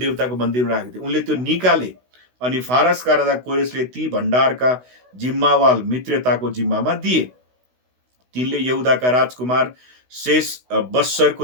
मन्दिरमा राखेको थिए, उनले त्यो निकाले। अनि फारसका राजा कोरेसले ती भण्डारका जिम्मावाल मित्रताको जिम्मामा दिए। तिनले यहुदाका राजकुमार शेष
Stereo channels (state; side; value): late; left; 16 ms